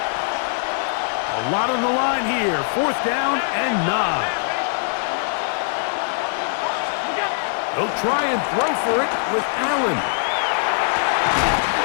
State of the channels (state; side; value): silent; right; 57 dB below the other